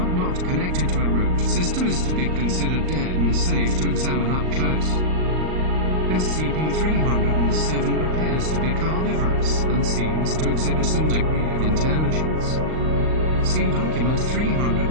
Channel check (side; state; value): left; late; 38 ms